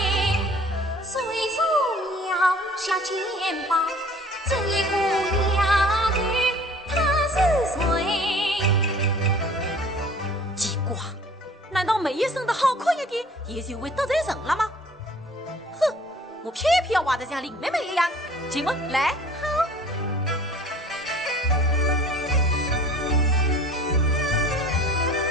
虽说要下肩膀，这一姑娘。”要梅姨生得好看一点，也就会得罪人了吗？哼，我偏偏要挖得像林妹妹一样。进门来。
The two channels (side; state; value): both; normal; correlation 0.50